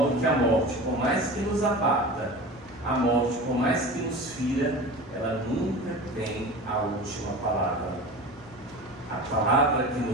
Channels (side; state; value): both; normal; correlation 0.34